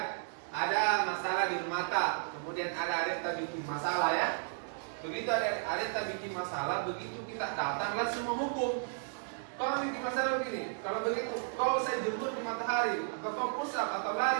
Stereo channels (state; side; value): silent; left; digital silence